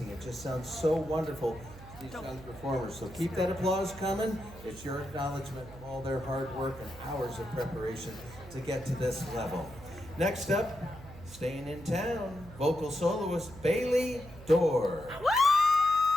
It just sounds so wonderful to these young performers. So keep that applause coming. It's your acknowledgement of all their hard work and hours of preparation to get to this level. Next up, staying in town, vocal soloist Bailey Dorr.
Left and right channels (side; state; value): right; noise; hum, 17 dB below the sound